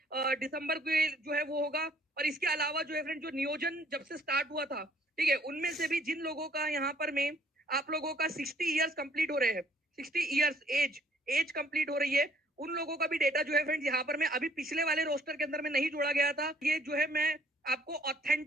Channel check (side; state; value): both; normal; correlation 0.61